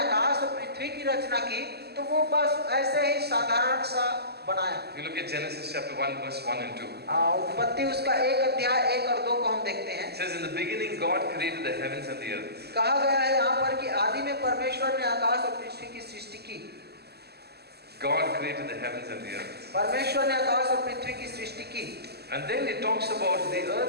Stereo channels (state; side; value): late; left; 0.47 ms